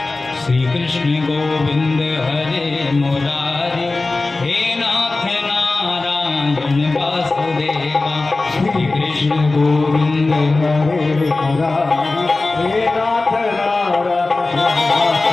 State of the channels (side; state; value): right; quieter; 3.4 dB